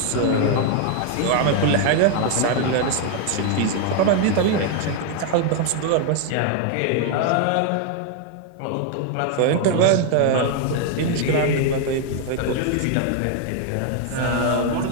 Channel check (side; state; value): both; different; correlation 0.00